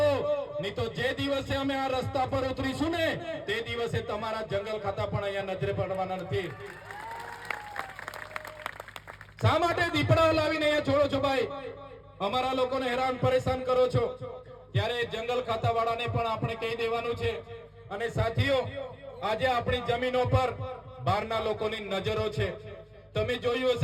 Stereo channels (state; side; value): identical; both; correlation 1.00